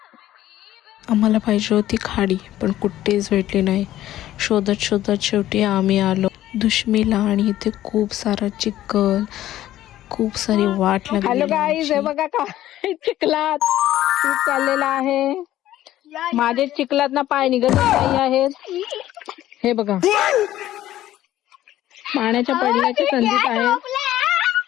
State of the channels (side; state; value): right; quieter; 13.7 dB